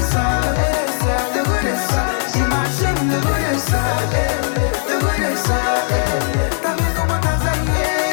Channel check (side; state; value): right; silent; digital silence